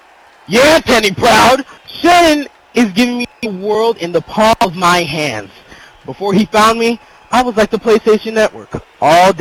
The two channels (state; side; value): identical; both; correlation 1.00